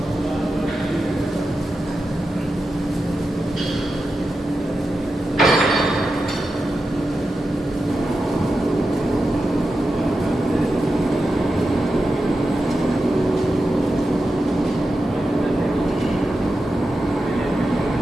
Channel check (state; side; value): normal; both; correlation 0.90